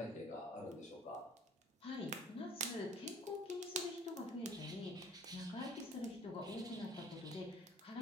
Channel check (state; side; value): normal; both; correlation 0.51